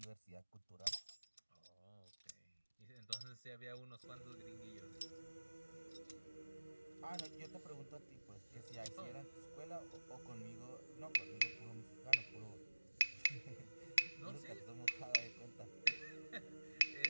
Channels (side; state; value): both; inverted; correlation -1.00